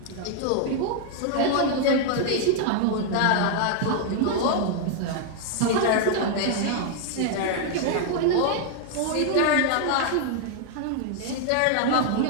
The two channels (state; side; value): different; both; correlation 0.00